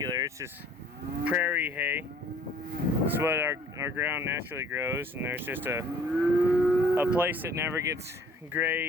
it's just prairie hay. It's what our ground naturally grows, and there's just a place that never gets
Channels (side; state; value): both; normal; correlation 0.55